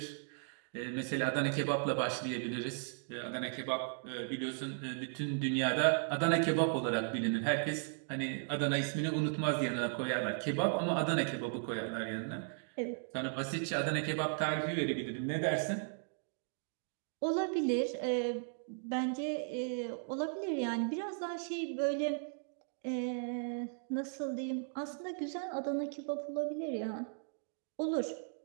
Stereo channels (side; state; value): left; silent; digital silence